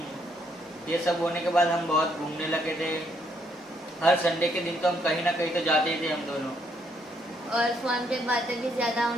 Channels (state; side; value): normal; both; correlation 0.72